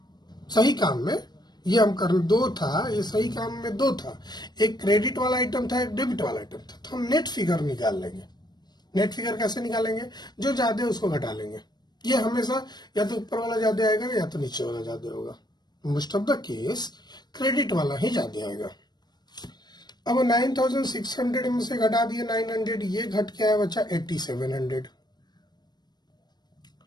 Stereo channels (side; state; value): right; late; 0.20 ms